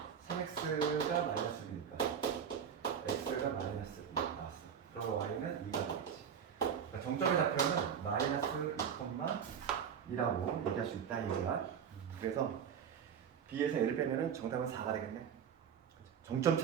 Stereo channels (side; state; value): left; quieter; 7.8 dB